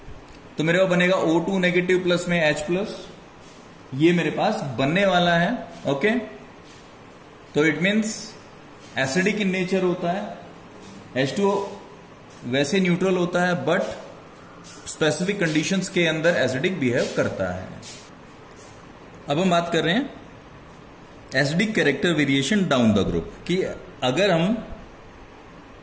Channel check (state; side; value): identical; both; correlation 1.00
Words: तो मेरे पास बनेगा O2 नेगेटिव प्लस में H प्लस, ये मेरे पास बनने वाला है। ओके, तो it means acidic in nature होता है। H2O वैसे न्यूट्रल होता है बट स्पेसिफिक कंडीशंस के अंदर एसिडिक बिहेव करता है। अब हम बात कर रहे हैं acidic character variation down the group कि अगर हम